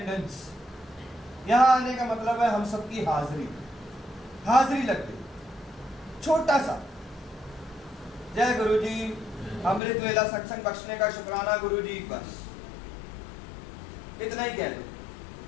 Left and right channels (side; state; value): right; drops out; at 9.8 s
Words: यहाँ आने का मतलब है हम सबकी हाजिरी लग गई। छोटा सा जय गुरु जी, अमृत वेला सत्संग बख्शने का शुक्राना गुरु जी, बस इतना ही कह दो।